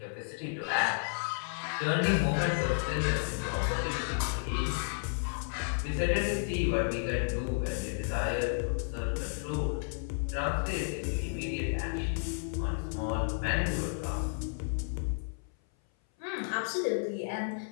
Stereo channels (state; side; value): silent; right; 56 dB below the other